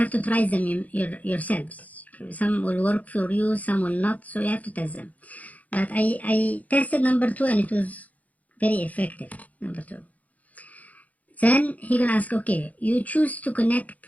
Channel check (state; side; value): late; right; 0.074 ms